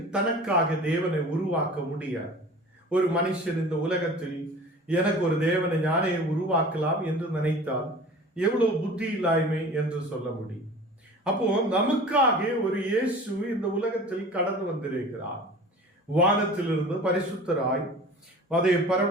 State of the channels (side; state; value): both; normal; correlation 0.40